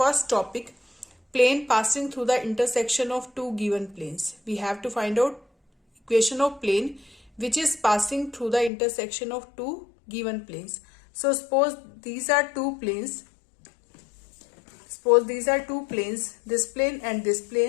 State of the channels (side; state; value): right; drops out; at 8.7 s